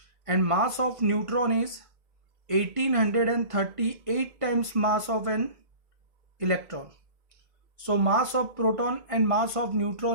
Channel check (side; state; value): left; late; 1.5 ms